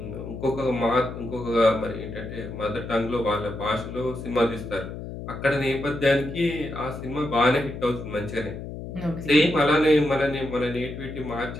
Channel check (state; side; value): noise; left; hum, 9 dB below the sound